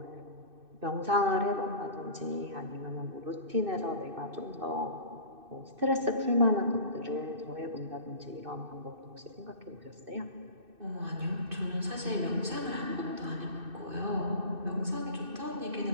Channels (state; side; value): late; left; 2.6 ms